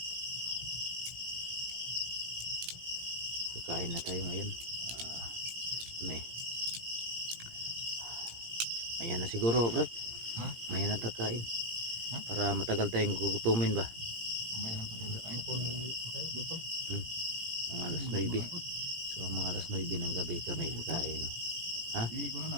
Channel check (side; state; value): left; late; 17 ms